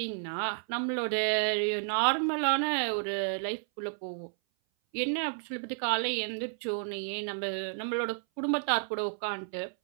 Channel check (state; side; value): silent; left; 57 dB below the other